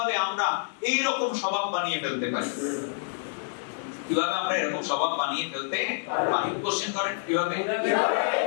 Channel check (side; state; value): right; silent; 60 dB below the other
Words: আমরা এই রকম স্বভাব বানিয়ে ফেলতে পারি, কিভাবে আমরা এরকম স্বভাব বানিয়ে ফেলতে পারি? কোশ্চেন করেন কিভাবে?